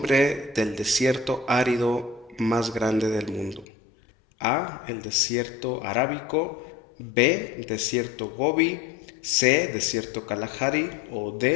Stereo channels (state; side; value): drops out; right; at 3.7 s